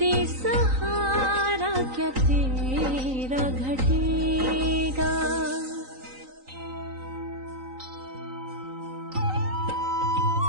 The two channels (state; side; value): late; left; 3.9 ms